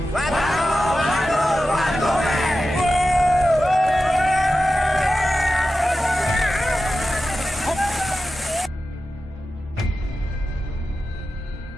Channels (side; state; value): both; normal; correlation 0.93